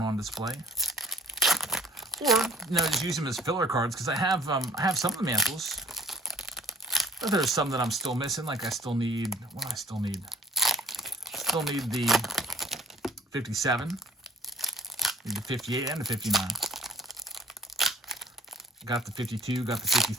on display. Or, just use them as filler cards, because I have some of the Mantles. But there's some that I'm still missing. Like I still need, what do I still need? Still need the 57. Need the 58 and the 59. Got the 52, got the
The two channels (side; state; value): both; normal; correlation 0.52